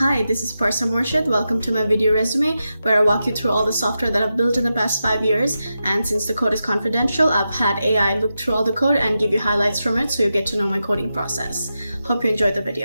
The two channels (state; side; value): inverted; both; correlation -0.89